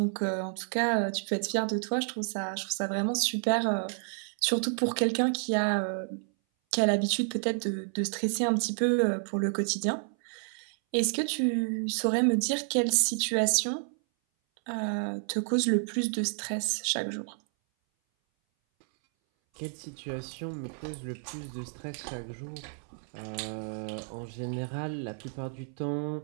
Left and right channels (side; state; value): left; silent; 58 dB below the other